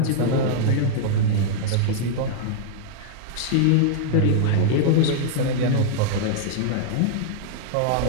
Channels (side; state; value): both; different; correlation -0.01